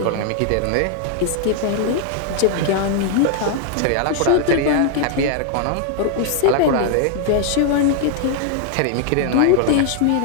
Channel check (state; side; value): different; both; correlation 0.00